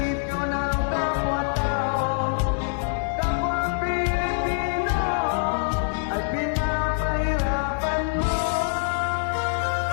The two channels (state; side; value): silent; right; digital silence